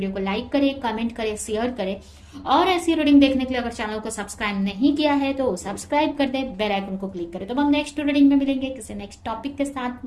को लाइक करें, कमेंट करें, शेयर करें। और ऐसी रीडिंग देखने के लिए अगर चैनल को सब्सक्राइब नहीं किया है तो सब्सक्राइब कर दे, बेल आइकन को क्लिक करें। तो हम नेक्स्ट रीडिंग में मिलेंगे किसी नेक्स्ट टॉपिक के साथ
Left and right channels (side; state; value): both; identical; correlation 1.00